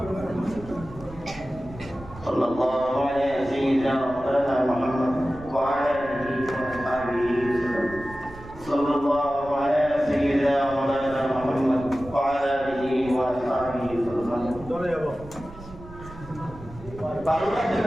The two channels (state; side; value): noise; right; rumble, 17 dB below the sound